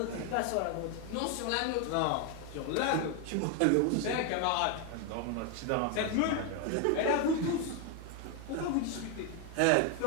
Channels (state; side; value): different; both; correlation 0.01